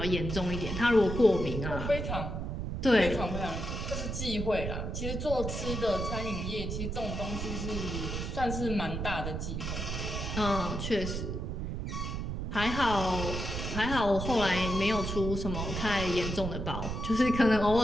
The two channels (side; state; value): right; noise; rumble, 4 dB below the sound